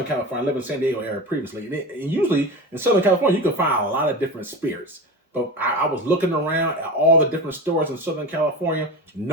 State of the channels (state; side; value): normal; both; correlation 0.27